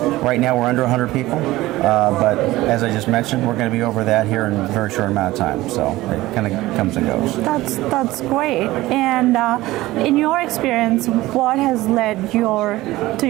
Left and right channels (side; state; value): left; quieter; 17.7 dB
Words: Right now we're under 100 people, but as I just mentioned, we're going to be over that here in a very short amount of time. So it kind of comes and goes. That's great. And in your experience, what has led to